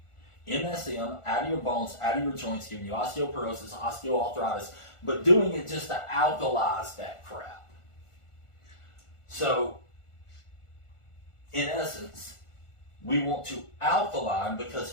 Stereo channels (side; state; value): right; late; 1.4 ms